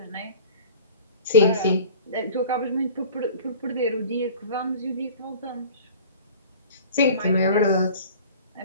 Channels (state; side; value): inverted; both; correlation -0.44